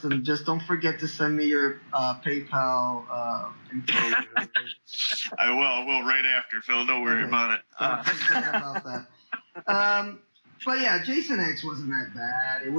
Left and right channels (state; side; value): inverted; both; correlation -1.00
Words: just don't forget to send me your PayPal info. I will right after, Phil. Don't worry about it. Don't forget about that. But yeah, Jason X wasn't that bad. It